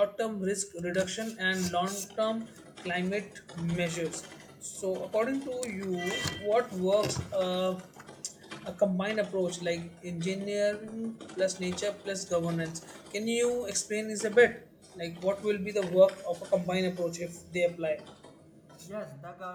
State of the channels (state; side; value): identical; both; correlation 1.00